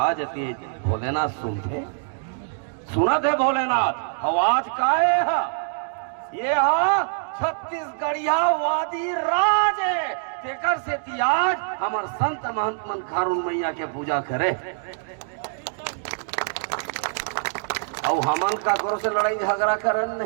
जाती। भोलेनाथ सुनते सुनत है भोलेनाथ आवाज काहे है ये है छत्तीसगढ़िया वादी राज है। तेकर से तियाज हमर संत महंत मन खारुन मैया के पूजा करे और हमन का गुरु से लड़ाई झगड़ा करन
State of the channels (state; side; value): silent; left; digital silence